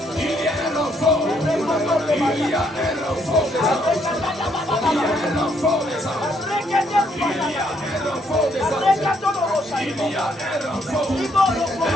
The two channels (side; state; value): both; normal; correlation 0.71